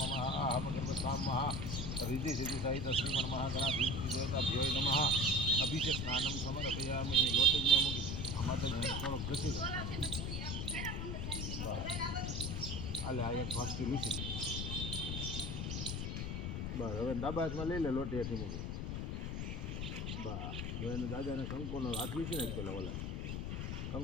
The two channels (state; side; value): noise; left; rumble, 3 dB below the sound